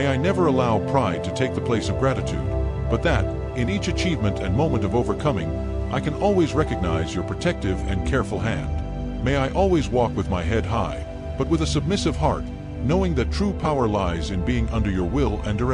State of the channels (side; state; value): both; identical; correlation 1.00